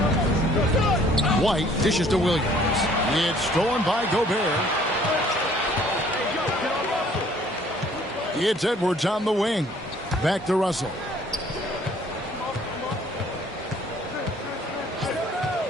White dishes to Williams. It's stolen by Gobert. It's Edwards on the wing. Back to Russell.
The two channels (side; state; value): both; normal; correlation 0.58